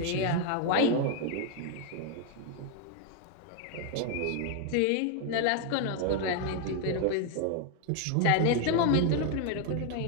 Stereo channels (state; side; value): different; both; correlation 0.00